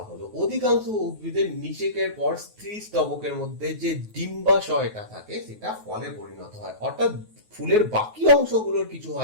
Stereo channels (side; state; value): left; late; 9.3 ms